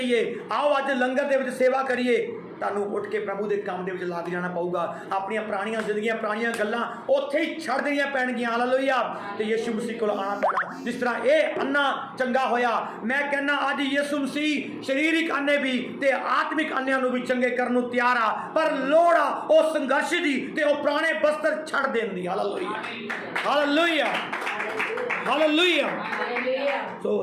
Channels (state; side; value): identical; both; correlation 1.00